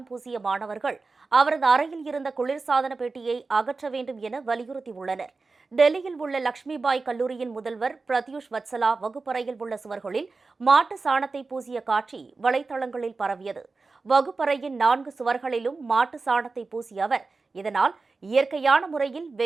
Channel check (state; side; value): quieter; left; 4.0 dB